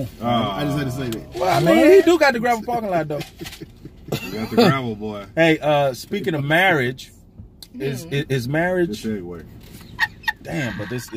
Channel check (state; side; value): identical; both; correlation 1.00